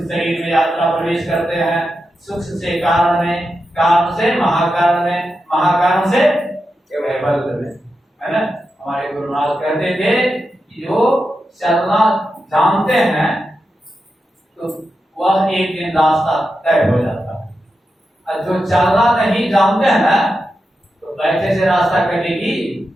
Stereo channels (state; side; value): normal; both; correlation 0.89